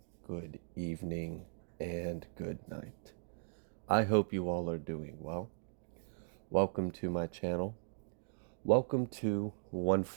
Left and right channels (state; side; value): silent; left; digital silence